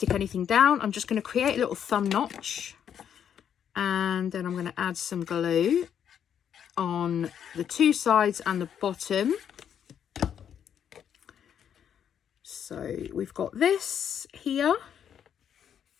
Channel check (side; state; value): right; quieter; 8.8 dB